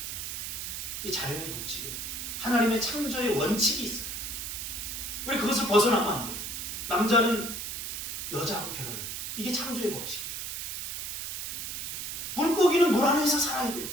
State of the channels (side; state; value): right; noise; hiss, 5 dB below the sound